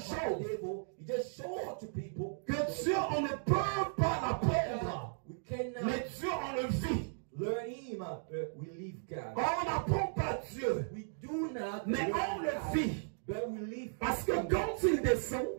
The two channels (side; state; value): left; silent; digital silence